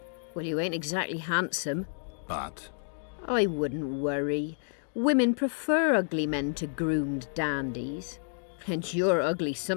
Well, you ain't exactly handsome. but I wouldn't worry. Women prefer ugly men to groomed dandies. And you're ugly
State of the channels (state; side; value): silent; right; digital silence